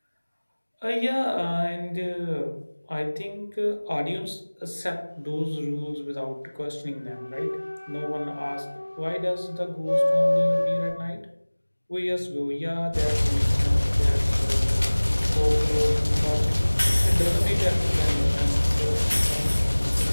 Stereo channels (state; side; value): inverted; both; correlation -1.00